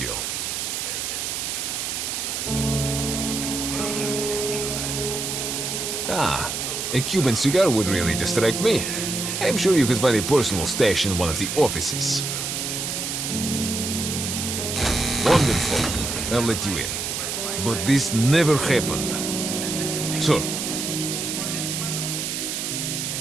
Ah, a Cuban cigar would really distract me. I'm sure you could find a personal stash in one of the offices. Wonderful. I'll let you in. But this never happened. Sir.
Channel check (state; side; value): noise; right; hiss, 3 dB below the sound